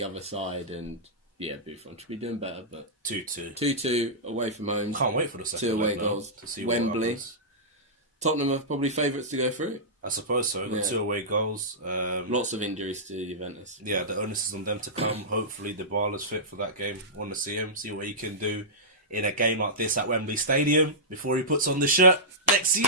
other side and... Yeah, Buffon should be doing better, but 2-2. 2-2 away from home. Can't wait for the second 2 away goals to see Wembley. Tottenham are probably favourites to go through. I suppose so. Got 2 away goals. Lots of injuries to Juventus. Yeah, the onus is on them to come. Hopefully, Dybala's fit for that game. Want to see him, see what he can do in a game like this at Wembley Stadium before he puts on the shirt next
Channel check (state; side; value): normal; both; correlation -0.15